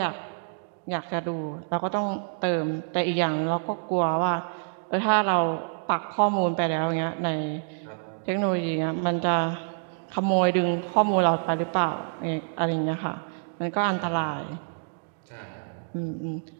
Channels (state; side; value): silent; left; digital silence